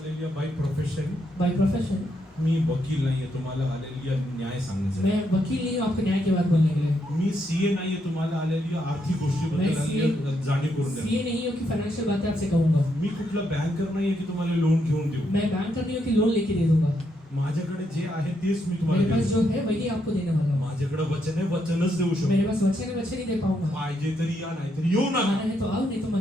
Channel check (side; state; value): both; normal; correlation 0.78